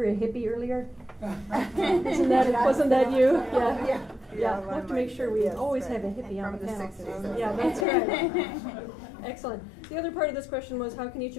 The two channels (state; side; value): drops out; right; at 7.9 s